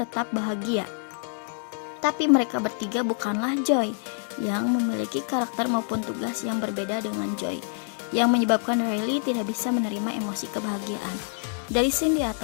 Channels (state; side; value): silent; right; 61 dB below the other